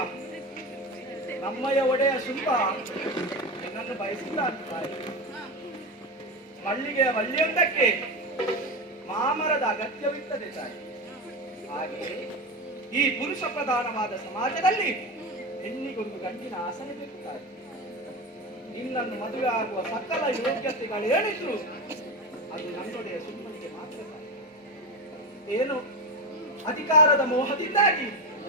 ನಮ್ಮಯ್ಯ ಒಡೆಯ ಶುಂಭ ನಿನ್ನನ್ನು ಬಯಸಿಲ್ಲ ತಾಯಿ. ಮಲ್ಲಿಗೆಯ ಬಳ್ಳಿಯೊಂದಕ್ಕೆ ಮಾಮರದ ಅಗತ್ಯವಿರ್ತದೆ ತಾಯಿ. ಹಾಗೆಯೇ ಈ ಪುರುಷ ಪ್ರಧಾನವಾದ ಸಮಾಜದಲ್ಲಿ ಹೆಣ್ಣಿಗೊಂದು ಗಂಡಿನ ಆಸನೆ ಬೇಕು ತಾಯಿ. ನಿನ್ನನ್ನು ಮದುವೆ ಆಗುವ ಸಕಲ ಯೋಗ್ಯತೆಗಳೇನಿದ್ರು ಅದು ನನ್ನೊಡೆಯ ಸುಮ್ಮನಿಗೆ ಮಾತ್ರ ತಾಯಿ. ಏನು ಅಧಿಕಾರದ ಮೋಹದಿಂದಾಗಿ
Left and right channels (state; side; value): normal; both; correlation 0.19